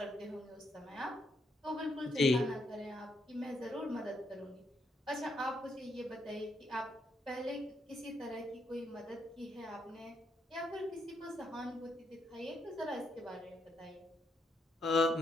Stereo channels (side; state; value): both; normal; correlation 0.76